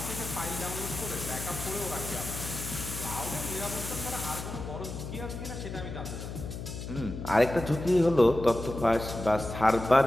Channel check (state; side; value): noise; left; hum, 8 dB below the sound